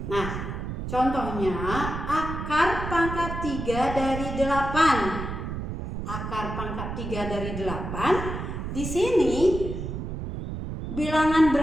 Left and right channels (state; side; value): noise; right; rumble, 6 dB below the sound